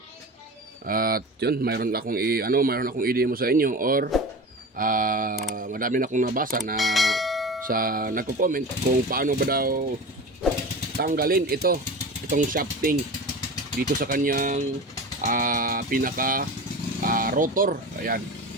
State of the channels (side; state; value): both; normal; correlation 0.31